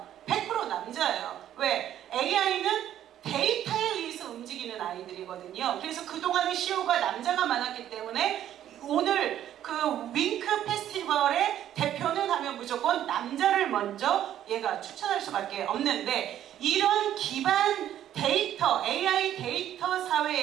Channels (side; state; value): left; quieter; 11.3 dB